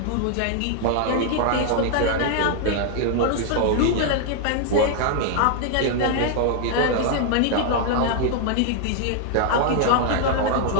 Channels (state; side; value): different; both; correlation 0.00